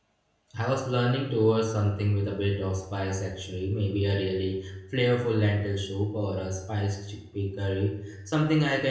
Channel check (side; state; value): both; identical; correlation 1.00